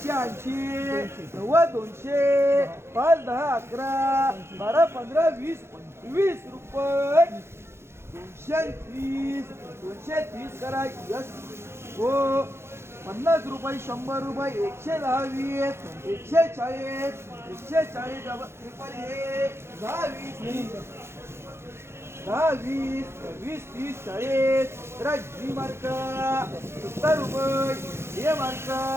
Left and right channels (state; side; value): late; left; 0.12 ms